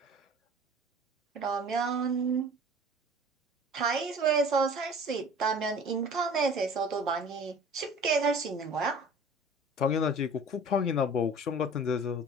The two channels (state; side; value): normal; both; correlation 0.45